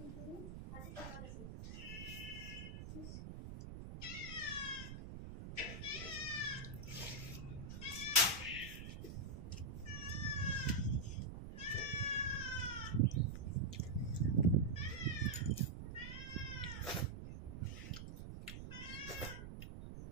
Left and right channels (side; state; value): right; noise; rumble, 8 dB below the sound